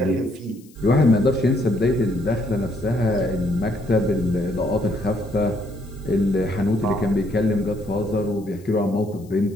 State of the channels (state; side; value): noise; left; hiss, 28 dB below the sound